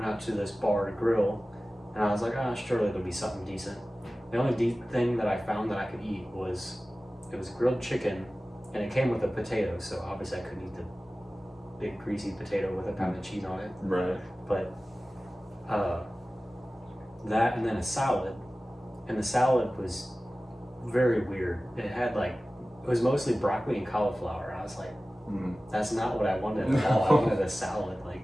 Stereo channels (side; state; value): both; normal; correlation 0.96